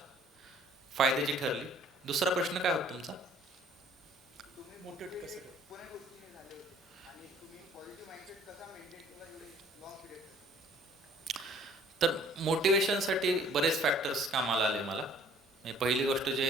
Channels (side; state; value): both; normal; correlation 0.56